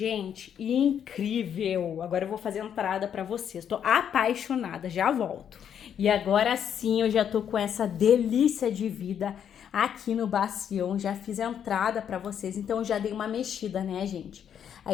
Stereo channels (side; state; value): right; quieter; 8.7 dB